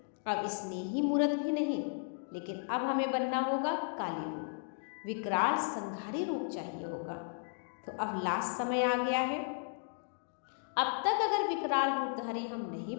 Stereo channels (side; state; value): right; silent; digital silence